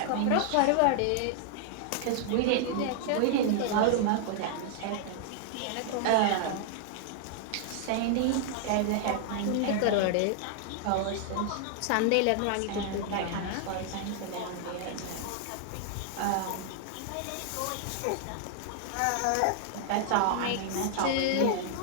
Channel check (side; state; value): both; different; correlation 0.00